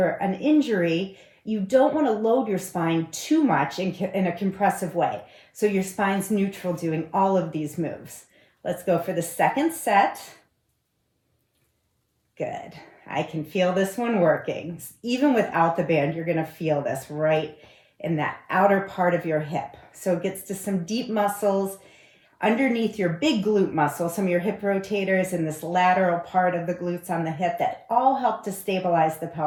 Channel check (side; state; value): both; identical; correlation 1.00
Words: an injury, you don't want to load your spine too much in a compressive way. So your spine's neutral doing all of these moves. Let's go for the second set. Good. I can feel this one working. Even without the band, you're going to feel this right in that outer part of your hip. So it gets to some deep muscles underneath your big glute muscle, some of your hip rotators and this lateral part of the glutes on the hip that all help to stabilize the